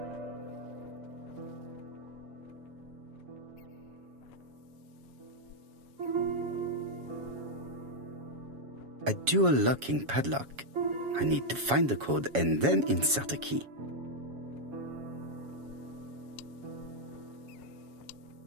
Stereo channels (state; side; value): late; left; 7.2 ms